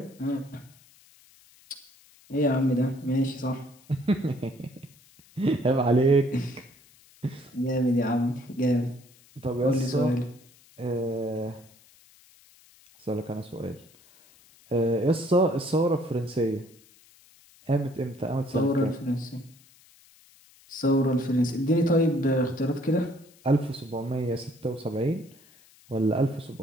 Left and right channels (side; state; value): left; noise; hiss, 28 dB below the sound